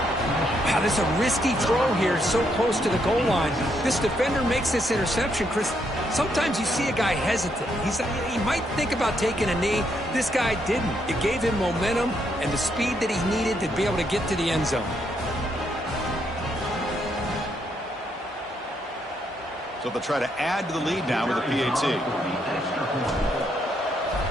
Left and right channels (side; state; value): both; normal; correlation 0.76